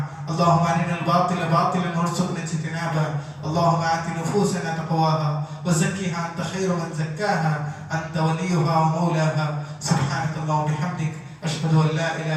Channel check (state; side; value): identical; both; correlation 1.00